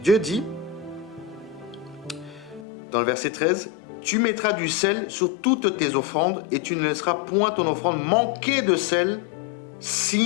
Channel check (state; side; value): drops out; right; at 2.7 s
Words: Dieu dit, dans le verset 13, « Tu mettras du sel sur toutes tes offrandes et tu ne laisseras point ton offrande manquer de sel,